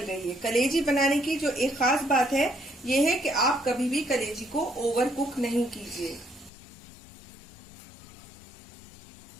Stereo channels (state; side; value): drops out; right; at 6.5 s